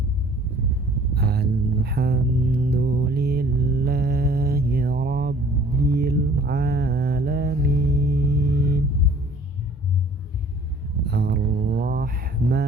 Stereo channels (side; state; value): both; normal; correlation 0.52